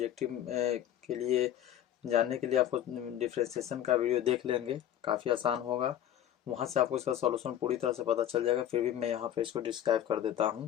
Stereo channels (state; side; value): quieter; right; 11.0 dB